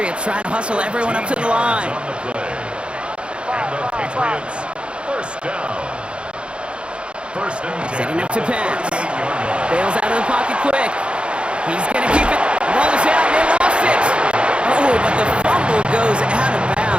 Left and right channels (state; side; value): late; left; 0.057 ms